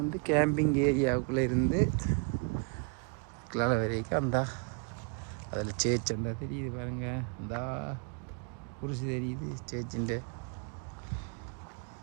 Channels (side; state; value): left; quieter; 36.1 dB